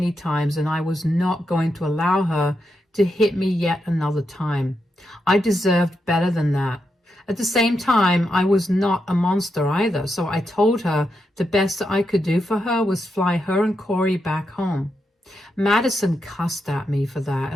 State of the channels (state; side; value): normal; both; correlation 0.84